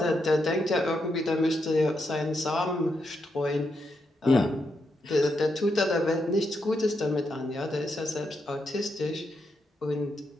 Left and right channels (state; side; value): normal; both; correlation 0.82